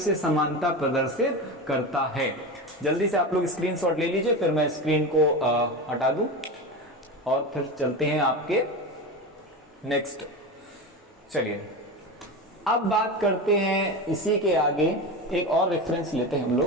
समानता प्रदर्शित करता है। जल्दी से आप लोग स्क्रीनशॉट ले लीजिए, फिर मैं स्क्रीन को हटा दूं और फिर चलते हैं आपके नेक्स्ट। चलिए अब बात करते हैं इसी के आगे एक और रेफरेंस लेते हैं हम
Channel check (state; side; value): normal; both; correlation 0.23